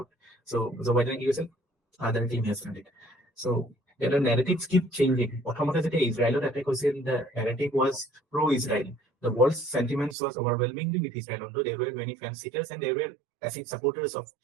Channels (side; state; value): left; drops out; at 10.2 s